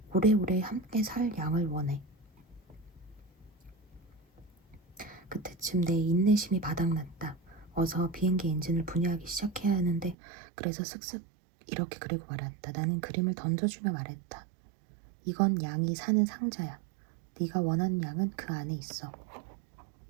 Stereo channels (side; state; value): left; drops out; at 10.2 s